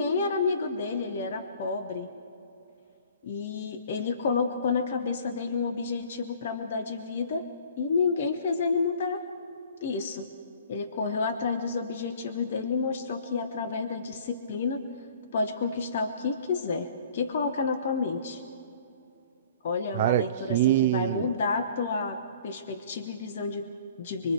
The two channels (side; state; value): both; inverted; correlation -0.51